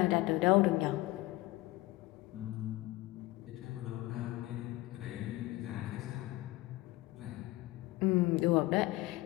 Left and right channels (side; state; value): right; quieter; 19.2 dB